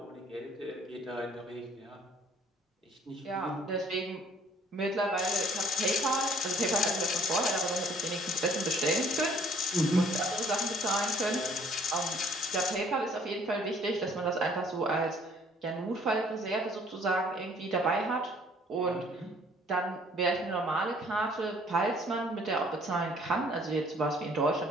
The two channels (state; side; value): normal; both; correlation 0.57